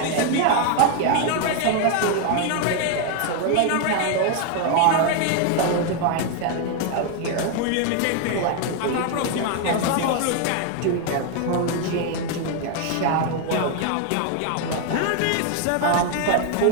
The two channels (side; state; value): both; different; correlation 0.01